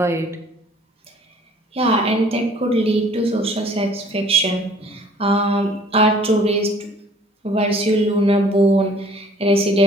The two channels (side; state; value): both; normal; correlation 0.54